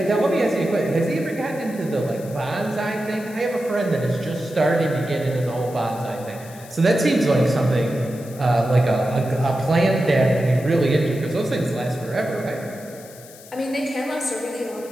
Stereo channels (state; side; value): noise; left; hiss, 20 dB below the sound